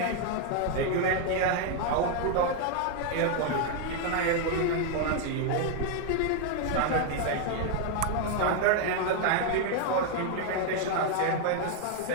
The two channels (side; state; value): both; different; correlation 0.00